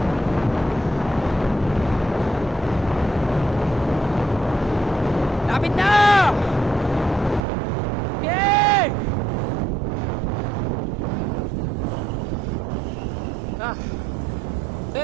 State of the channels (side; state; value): left; drops out; at 7.4 s